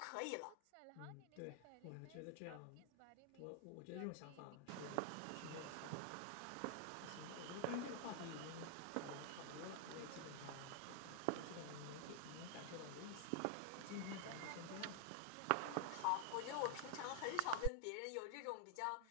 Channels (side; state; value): both; different; correlation 0.00